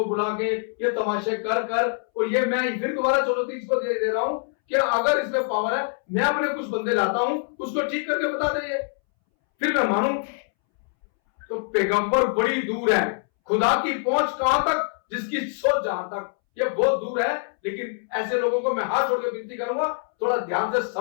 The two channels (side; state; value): right; silent; 62 dB below the other